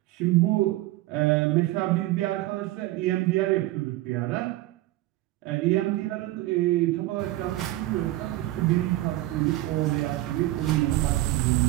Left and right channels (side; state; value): left; quieter; 17.0 dB